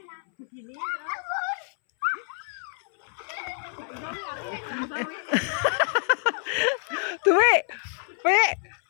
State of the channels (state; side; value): silent; right; 60 dB below the other